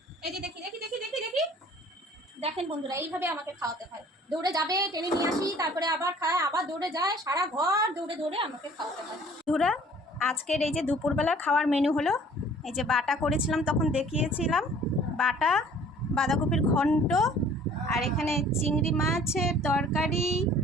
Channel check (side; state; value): both; normal; correlation 0.52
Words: এই যে দেখি দেখি দেখি দেখি দেখি, দেখেন বন্ধুরা, এইভাবে আমাকে খাওয়াতে হয়। দৌড়ে যাবে, টেনে নিয়ে আসি, তারপরে আবার খায়, আবার দৌড়ে যায়, সারা ঘর দৌড়ে দৌড়ে আমাকে খাওয়াতে হয়। বন্ধুরা আজকের এই যে দুপুরবেলার খাওয়ার মেনু হলো, এই যে বাটা করেছিলাম তখন দেখিয়েছিলাম, বাটা, বাঁধাকপির ঘন্ট, আর এখানে চিংড়ি মাছের তরকারি,